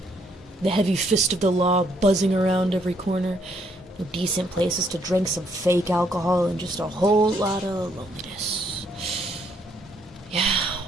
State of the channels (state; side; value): normal; both; correlation 0.70